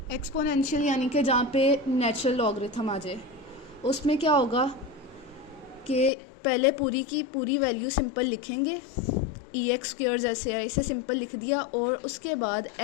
एक्सपोनेंशियल यानी कि जहाँ पे नेचुरल लॉगरिथम आ जाए, उसमें क्या होगा कि पहले पूरी की पूरी वैल्यू सिंपल लिखेंगे, एक्स स्क्वायर जैसे है इसे सिंपल लिख दिया, और उसके बाद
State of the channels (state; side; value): drops out; right; at 6.1 s